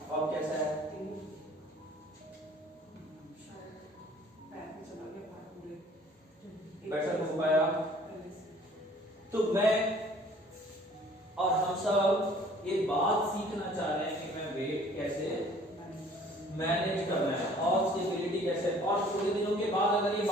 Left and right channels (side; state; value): both; normal; correlation 0.54